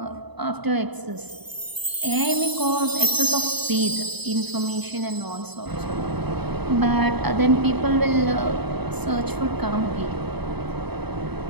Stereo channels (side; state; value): left; late; 0.98 ms